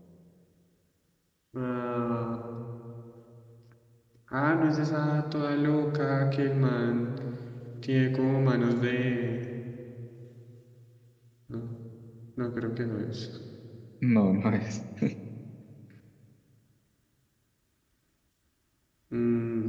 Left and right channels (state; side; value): identical; both; correlation 1.00